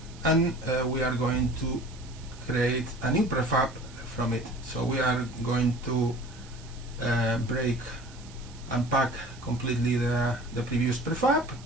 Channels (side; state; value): right; noise; hiss, 21 dB below the sound